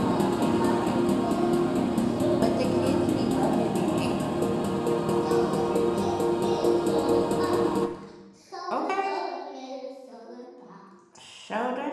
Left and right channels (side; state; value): both; identical; correlation 1.00